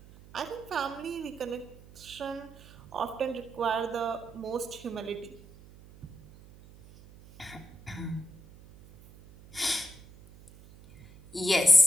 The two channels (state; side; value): noise; right; hum, 21 dB below the sound